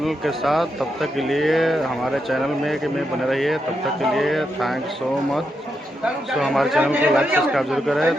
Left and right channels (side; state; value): both; normal; correlation 0.84